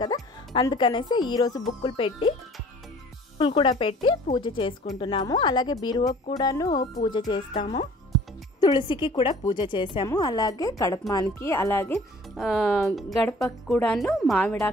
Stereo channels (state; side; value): normal; both; correlation 0.50